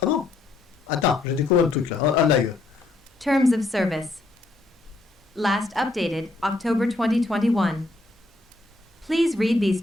Ah bon. Attends, j'ai découvert un truc là, en live. Terms of service. Last updated October 2021. Please read these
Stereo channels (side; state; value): right; quieter; 3.1 dB